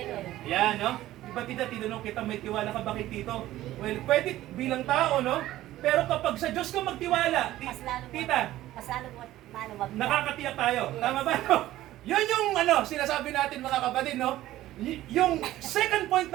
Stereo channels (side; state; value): left; quieter; 14.9 dB